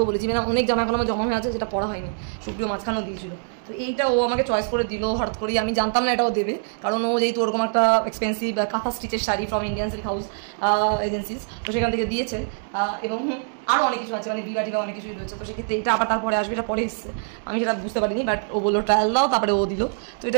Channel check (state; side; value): silent; left; digital silence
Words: বলেছি, মানে অনেক জামা এখন আমার জমা হয়ে আছে যেটা পড়া হয়নি, সুপ্রিয় মাঝখানেও দিয়েছিল। তো এইটা ও আমাকে চয়েস করে দিল হঠাৎ করেই, আমি জানতাম না এটাও দেবে, কারণ ও যেহেতু ওরকম একটা এক্সপেন্সিভ কাঁথা স্টিচের sari from Indian silk house agencies, তো সেখান থেকে দিয়েছে। এবং আরও অনেক কিছু আছে, মানে বিবা টিবা অনেক কিছুই রয়েছে। তো সেক্ষেত্রে এটা আবার তারপরে আসবে, এটা পরে এসছে, আমি সেটা বুঝতে পারিনি, বাট ও বললো ট্রায়াল দাও, তারপরে ও দিল। তো